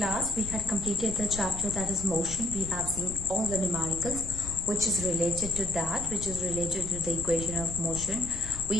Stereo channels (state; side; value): noise; left; rumble, 10 dB below the sound